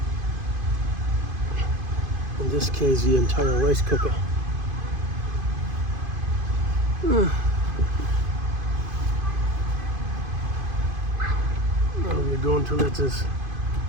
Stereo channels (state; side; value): late; left; 2.5 ms